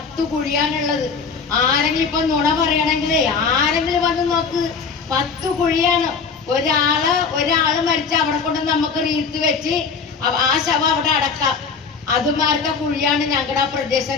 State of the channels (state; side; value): quieter; right; 5.4 dB